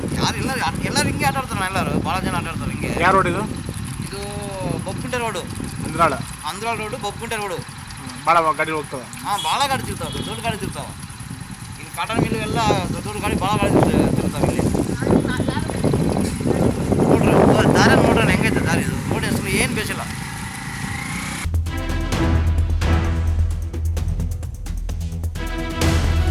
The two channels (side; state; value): both; identical; correlation 1.00